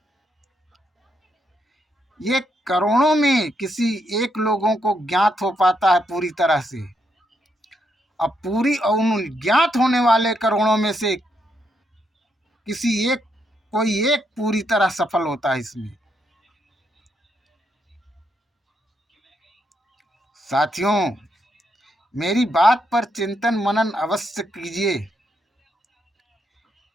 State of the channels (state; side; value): normal; both; correlation 0.78